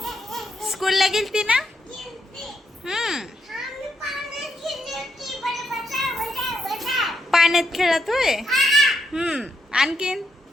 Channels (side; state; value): both; normal; correlation 0.80